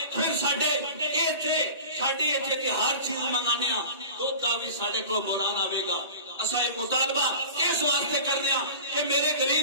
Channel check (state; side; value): inverted; both; correlation -0.37